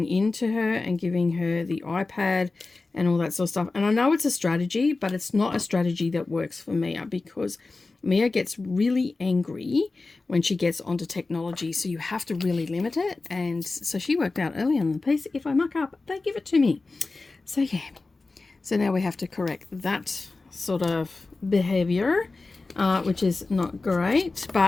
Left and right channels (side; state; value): right; quieter; 3.6 dB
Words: in to her and giving her the iPad and all that sort of stuff. And I know it's a strategy, but it's not a strategy that works for Mia, because Mia gets really angry when she gets onto technology, so you have to really limit it. And so she worked out early on the piece, if I muck up, they give it to me. So yeah, so now we have to correct that sort of behavior, which is not great,